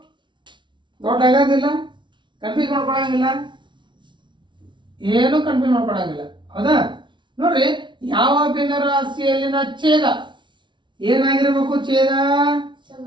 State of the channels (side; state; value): left; late; 0.23 ms